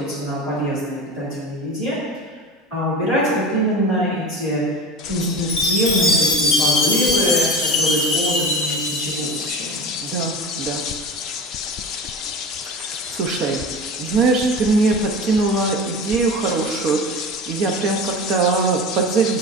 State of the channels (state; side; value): normal; both; correlation 0.32